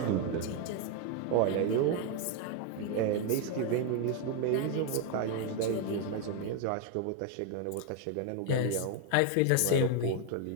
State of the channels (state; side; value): different; both; correlation 0.01